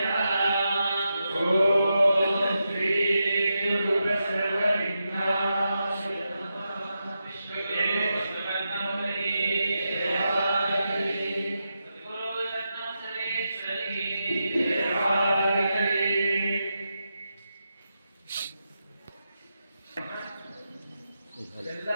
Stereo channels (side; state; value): both; inverted; correlation -0.87